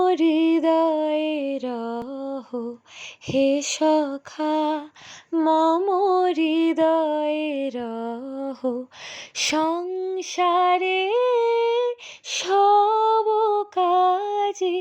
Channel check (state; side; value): identical; both; correlation 1.00